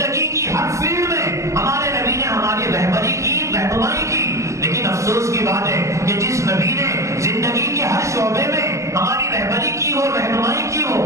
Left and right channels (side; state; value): left; late; 0.15 ms